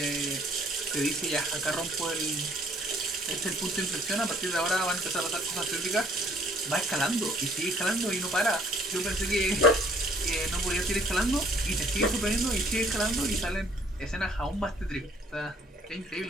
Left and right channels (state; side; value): normal; both; correlation 0.59